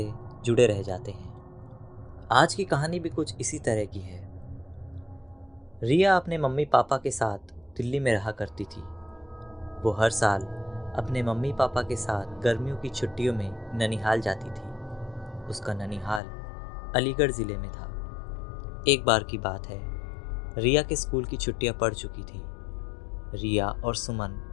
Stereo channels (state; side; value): drops out; right; at 16.2 s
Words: जुड़े रह जाते हैं। आज की कहानी भी कुछ इसी तरह की है। रिया अपने मम्मी पापा के साथ दिल्ली में रहा करती थी। वो हर साल अपने मम्मी पापा के साथ गर्मियों की छुट्टियों में ननिहाल जाती थी। उसका ननिहाल अलीगढ़ ज़िले में था। एक बार की बात है, रिया के स्कूल की छुट्टियां पड़ चुकी थी। रिया और सुमन